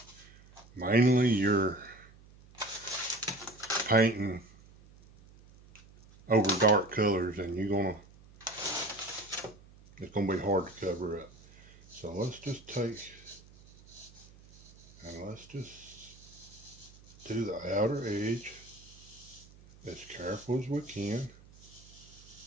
mainly you're painting over dark colors, and it's gonna be hard to cover up. So let's just take, and let's just do the outer edge as careful as we can.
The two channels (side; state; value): right; noise; hum, 23 dB below the sound